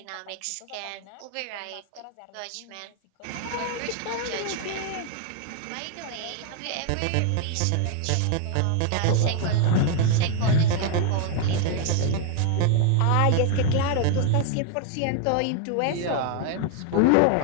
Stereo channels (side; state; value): both; different; correlation 0.00